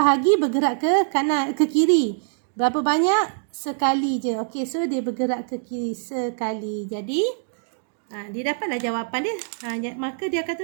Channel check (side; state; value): left; silent; digital silence